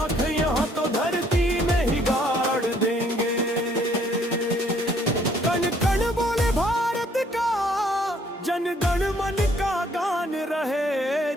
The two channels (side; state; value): both; normal; correlation 0.64